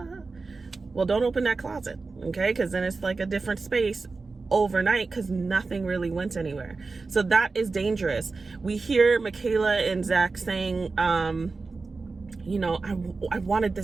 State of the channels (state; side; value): quieter; left; 4.0 dB